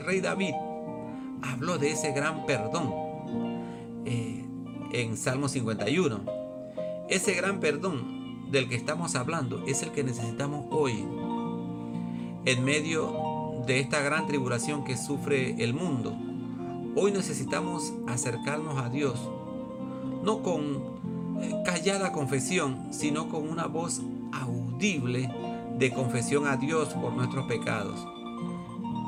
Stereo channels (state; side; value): identical; both; correlation 1.00